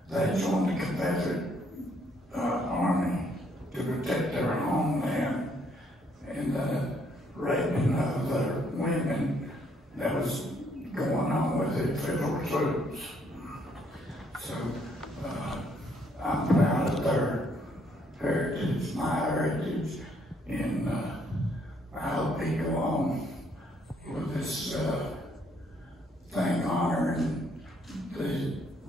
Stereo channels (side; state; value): both; normal; correlation 0.69